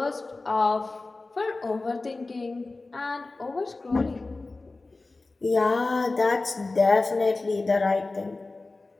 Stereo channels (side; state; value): right; quieter; 3.4 dB